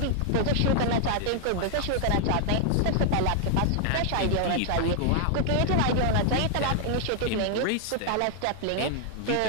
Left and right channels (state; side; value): different; both; correlation 0.00